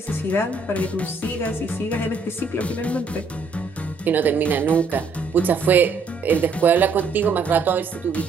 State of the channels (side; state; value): left; quieter; 4.4 dB